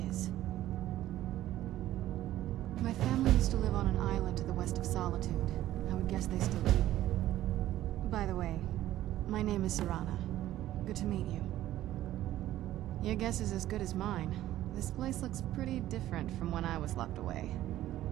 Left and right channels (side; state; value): left; quieter; 13.9 dB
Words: is. My family used to live on an island to the west of Solitude. I would guess they still do. By the way, my name is Serana. Good to meet you. Your guess is as good as mine. This place looks pretty different from when I was locked away.